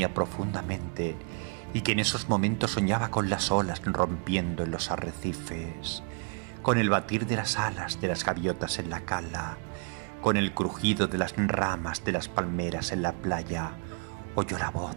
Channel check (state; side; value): quieter; left; 37.0 dB